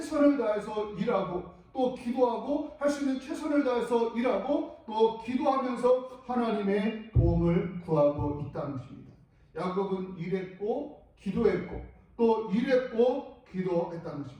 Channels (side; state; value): both; identical; correlation 1.00